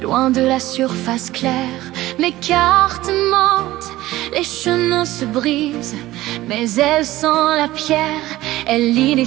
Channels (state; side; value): quieter; left; 16.7 dB